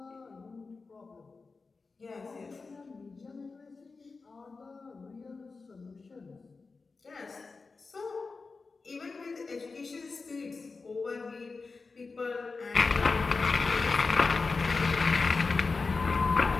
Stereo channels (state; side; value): quieter; right; 4.2 dB